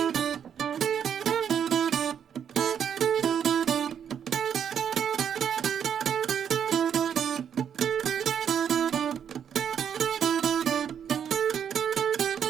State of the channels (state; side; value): quieter; left; 8.3 dB